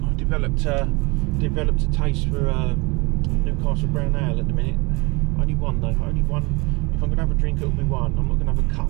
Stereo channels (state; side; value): quieter; left; 27.1 dB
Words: I've developed a taste for Newcastle Brown Ale at the minute. Only one though, only one. If I'm going to have a drink, it'll be one. I'm not going to have a